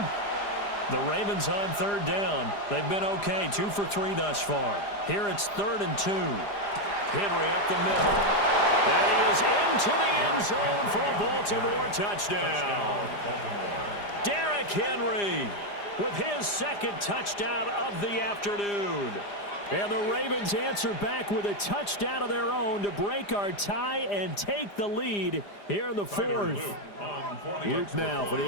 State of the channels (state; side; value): late; right; 4.9 ms